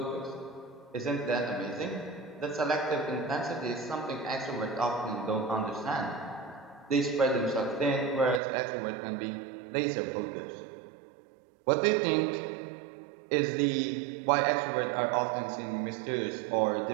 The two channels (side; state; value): left; drops out; at 8.4 s